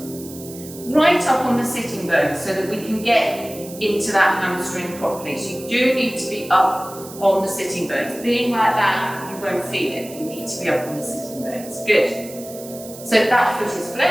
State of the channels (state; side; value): noise; right; hiss, 16 dB below the sound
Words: right up on the sitting bone so that we can get into that hamstring properly. So you do need to be up on the sitting bones. Being like that, you won't feel it. You need to be up on the sitting bones. Good. So that foot is